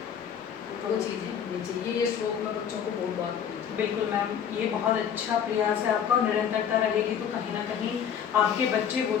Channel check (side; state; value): right; quieter; 8.3 dB